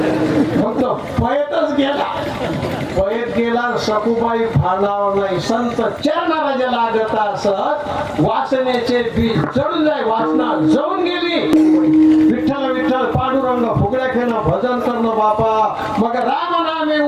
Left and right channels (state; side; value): identical; both; correlation 1.00